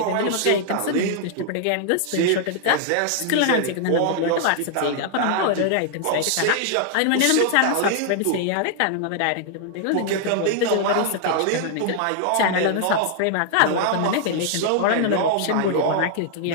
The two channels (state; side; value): different; both; correlation -0.01